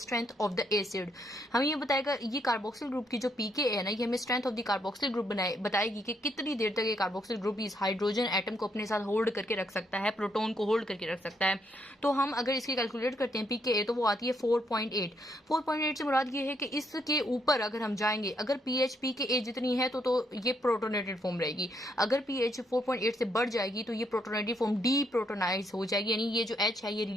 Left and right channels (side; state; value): both; normal; correlation 0.75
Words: of the acid. हमें ये बताएगा ये कार्बोक्सिल ग्रुप की जो pKa है ना, ये हमें strength of the carboxyl group बताएगी कि कितनी देर तक ये कार्बोक्सिल ग्रुप इस हाइड्रोजन एटम को अपने साथ होल्ड करके रख सकता है, प्रोटॉन को होल्ड करके रख सकता है। तो हम अगर इसकी कैलकुलेट करते हैं pKa तो वो आती है 4.8। 4.8 से मुराद ये है कि इसके ऊपर अगर हम जाएंगे, अगर pH pKa जितनी है तो ये प्रोटोनेटेड फॉर्म रहेगी। अगर pH 4.8 से बढ़ जाएगी तो ये प्रोटोनेटेड फॉर्म डीप्रोटोनाइज हो जाएगी, यानी ये जो H है ये